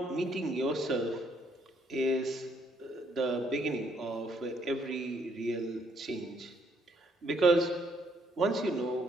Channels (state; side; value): normal; both; correlation 0.69